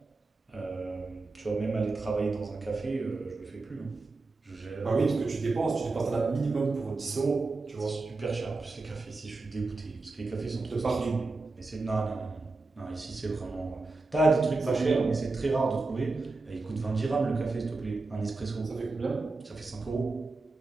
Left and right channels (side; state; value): left; quieter; 3.6 dB